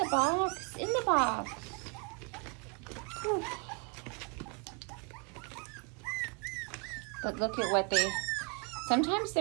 box, in the box. Whew. But look at what they, sometimes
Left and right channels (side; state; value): left; quieter; 34.3 dB